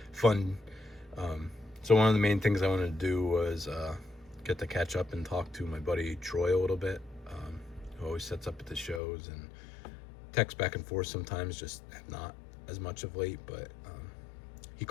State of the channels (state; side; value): drops out; right; at 9.0 s